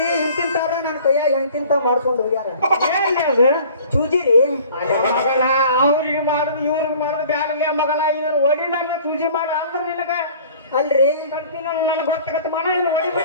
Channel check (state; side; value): inverted; both; correlation -0.49